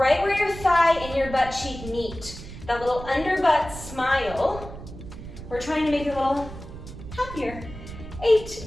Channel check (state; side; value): noise; right; rumble, 12 dB below the sound